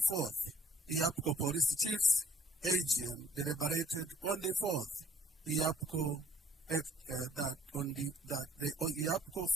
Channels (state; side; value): normal; both; correlation 0.58